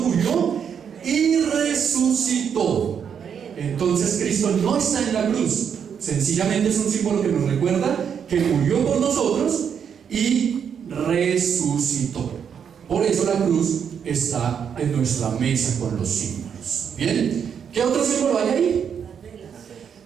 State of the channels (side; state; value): left; quieter; 7.6 dB